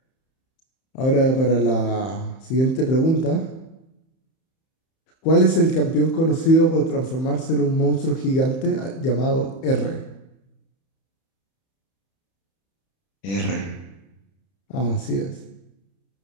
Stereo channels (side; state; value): right; late; 31 ms